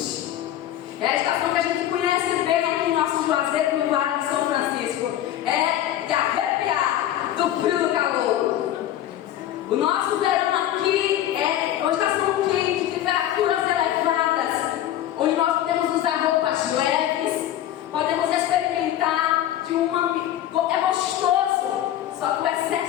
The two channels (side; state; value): right; quieter; 12.2 dB